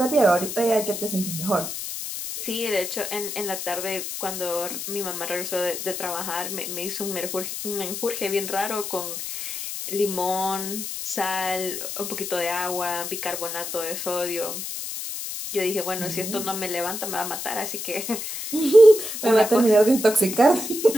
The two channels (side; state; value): left; noise; hiss, 6 dB below the sound